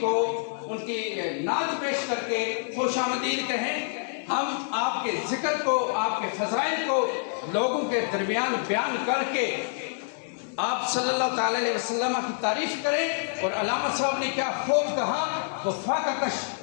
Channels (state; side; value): silent; right; digital silence